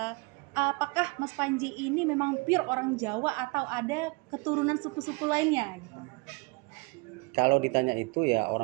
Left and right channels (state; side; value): quieter; left; 28.8 dB